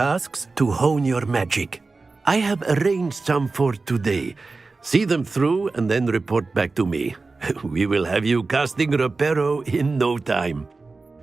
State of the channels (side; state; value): left; quieter; 3.8 dB